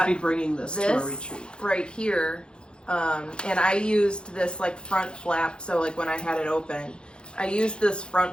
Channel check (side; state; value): right; late; 0.051 ms